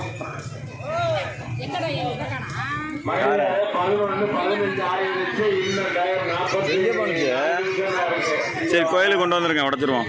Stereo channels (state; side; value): identical; both; correlation 1.00